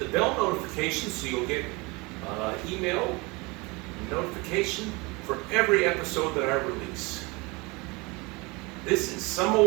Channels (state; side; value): quieter; left; 25.8 dB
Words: bell notification so you'll get email notification for every episode that I release. This is Some